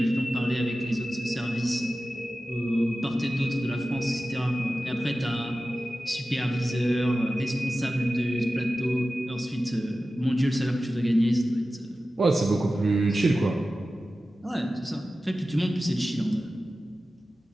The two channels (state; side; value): normal; both; correlation 0.94